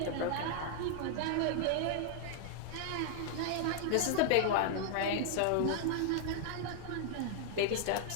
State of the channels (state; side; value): different; both; correlation 0.00